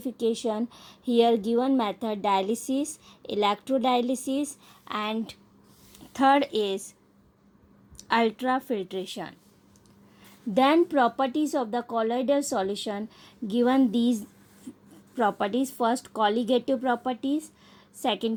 here given method dialysis, electrodialysis, and third is ultrafiltration. Then properties of the colloidal solution, given these properties: first colligative properties,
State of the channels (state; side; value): identical; both; correlation 1.00